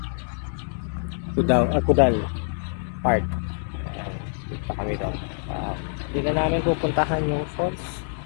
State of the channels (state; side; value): silent; right; digital silence